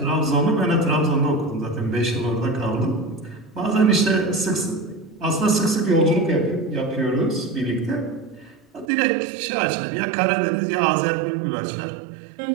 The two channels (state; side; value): drops out; left; at 8.9 s